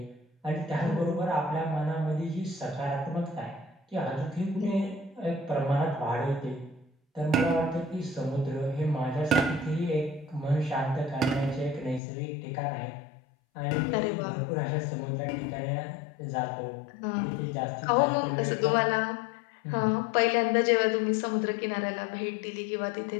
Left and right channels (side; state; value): right; drops out; at 12.0 s